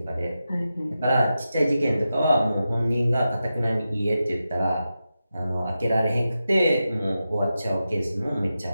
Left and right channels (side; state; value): both; inverted; correlation -0.90